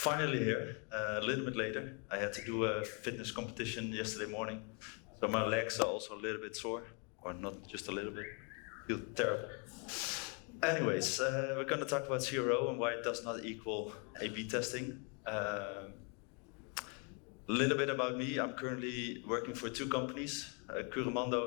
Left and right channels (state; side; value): quieter; right; 36.3 dB